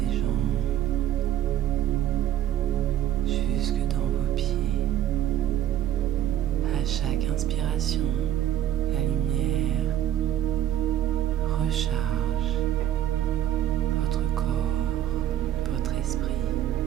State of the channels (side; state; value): left; quieter; 11.7 dB